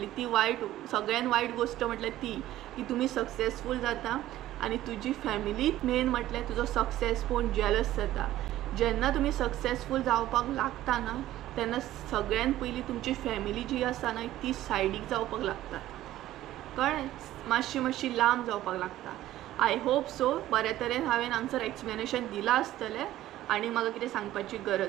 ती वायट, सगळ्यान वायट गोश्ट म्हटल्यार ती की तुमी सक्सेसफूल जाता आनी तुजी फॅमिली मेन म्हटल्यार तुजो सक्सेस पळोवन जेलस जाता. जेन्ना तुमी सक्सेसफूल जावपाक लागता ना तेन्ना सगळ्यान पयलीं तुमची फॅमिली जी आसा ना ती सायडीक जावपाक लागता. कळ्ळें. मातशी लांब जावपाक लागता. आय होप सो बऱ्या तरेन हांवें हांगसर एक्सप्लेनेशन दिलां आसतलें आनी म्हाका कितें सांगपाची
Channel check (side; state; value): left; quieter; 14.3 dB